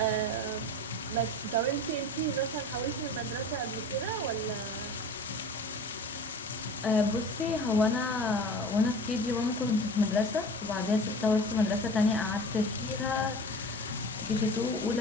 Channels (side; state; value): both; normal; correlation 0.38